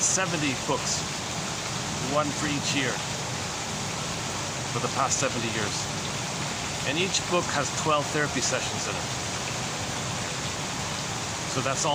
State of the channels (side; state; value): both; identical; correlation 1.00